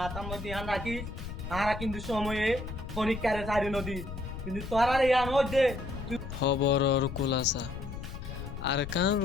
মধ্যে হান রাখিস আরা কিন্তু সময়ে পরীক্ষারে চারি নদী কিন্তু তোরার ইয়ান হইছে খবরর কুলাসা আরকান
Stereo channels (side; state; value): left; noise; rumble, 9 dB below the sound